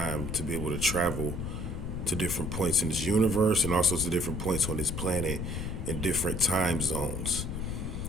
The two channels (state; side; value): noise; left; rumble, 4 dB below the sound